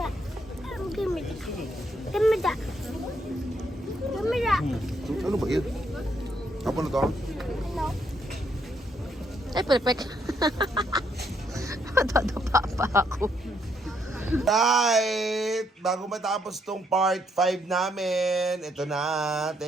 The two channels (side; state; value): both; normal; correlation 0.74